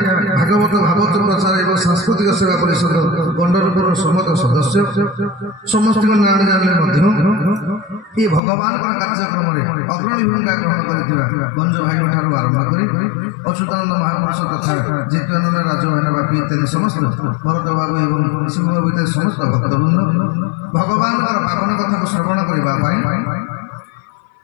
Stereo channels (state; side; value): drops out; right; at 8.4 s